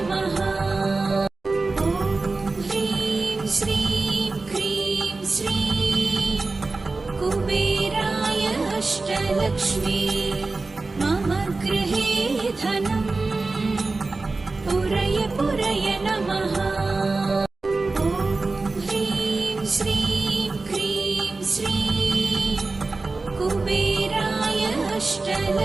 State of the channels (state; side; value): quieter; left; 3.6 dB